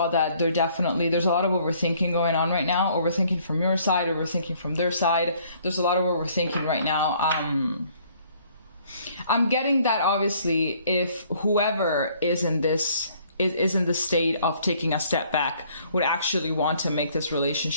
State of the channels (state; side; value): inverted; both; correlation -0.61